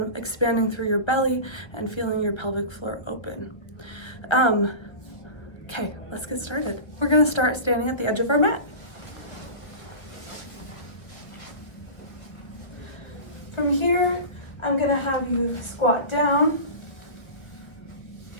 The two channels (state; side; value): late; right; 1.5 ms